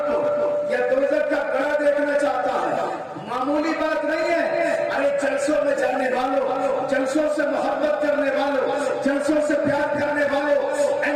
کو یا دوزخ کا گڑھا دیکھنا چاہتا ہے. معمولی بات نہیں ہے. ارے جلسوں میں جانے والوں، جلسوں سے محبت کرنے والوں، جلسوں سے پیار کرنے والوں، اے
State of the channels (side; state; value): both; identical; correlation 1.00